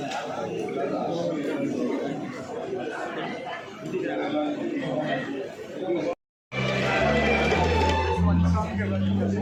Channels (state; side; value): identical; both; correlation 1.00